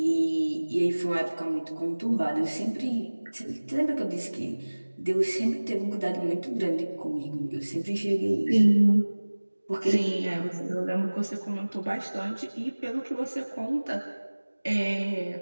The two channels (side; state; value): both; inverted; correlation -1.00